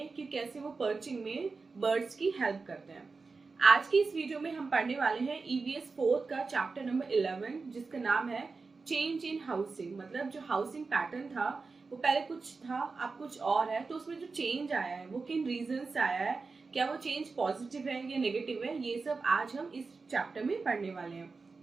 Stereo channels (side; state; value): left; quieter; 4.3 dB